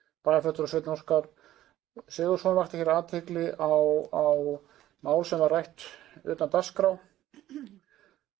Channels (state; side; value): quieter; left; 13.9 dB